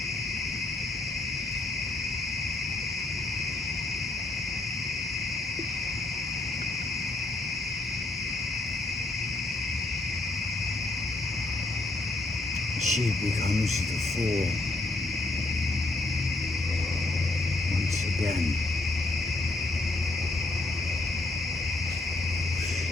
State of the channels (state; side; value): quieter; right; 3.0 dB